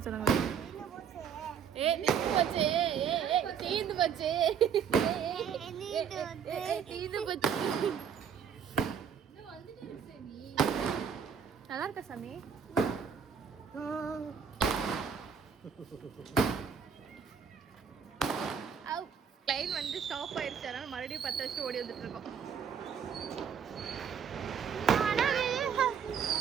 சொன்னாங்க. தீந்து போச்சு. தீந்து போச்சு. தீந்து போச்சு. நல்லா இருக்கா சாமி? லைன் வந்து ஸ்டாப் ஆயிடுச்சு, அதனால மறுபடியும் 10 வருஷம் ஓடி வந்துட்டு இருக்கோம்.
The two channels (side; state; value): left; quieter; 7.4 dB